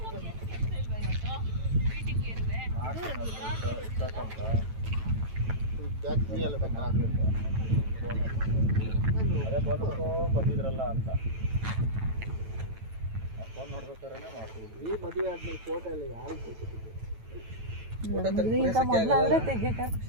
ಬಂದಿದ್ರಲ್ಲ ಅಂತ ಫೋನ್ ನೋಡ್ಬೇಕಾದ್ರೆ ಮಾಡ್ತೀವಿ. ಈ ಮದುವೆ ಆದ್ಮೇಲೆ ಫೋಟೋ ಎಲ್ಲ ಯಾರು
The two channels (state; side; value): late; left; 9.1 ms